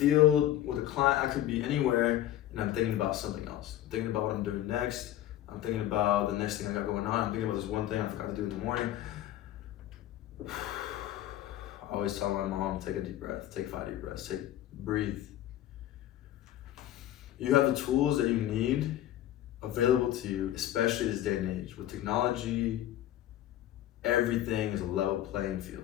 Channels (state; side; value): quieter; right; 13.0 dB